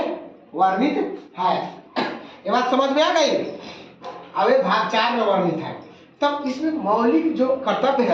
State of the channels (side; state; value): both; identical; correlation 1.00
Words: वर्णित है। ये बात समझ में आ गई? अब ये भाग 4 में वर्णित है। तब इसमें मौलिक जो कर्तव्य